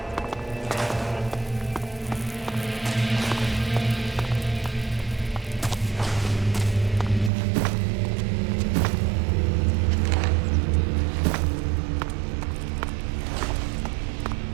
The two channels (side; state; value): left; drops out; at 7.3 s